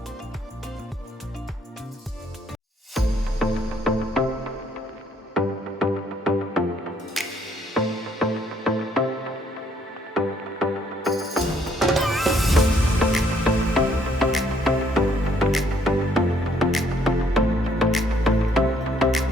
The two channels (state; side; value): normal; both; correlation 0.67